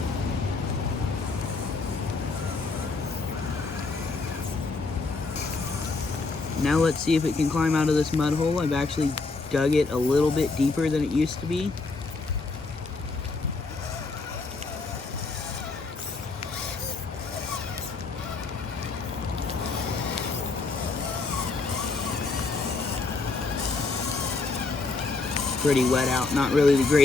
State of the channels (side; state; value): right; quieter; 3.8 dB